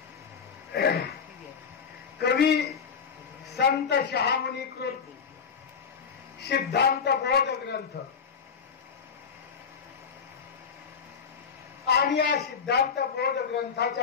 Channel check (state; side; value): quieter; right; 6.3 dB